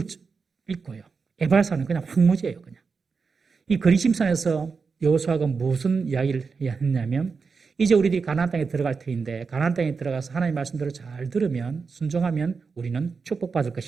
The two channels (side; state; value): left; quieter; 5.0 dB